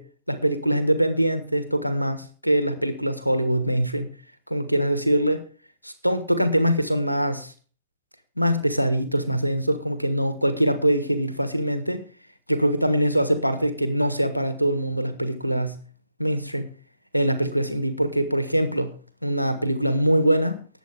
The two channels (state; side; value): inverted; both; correlation -0.87